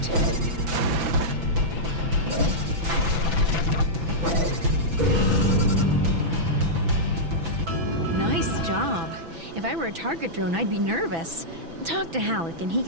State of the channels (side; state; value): left; late; 6.0 ms